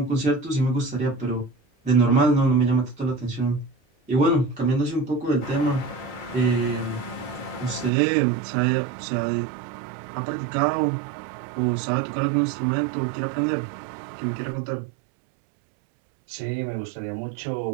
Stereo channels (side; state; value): left; drops out; at 7.9 s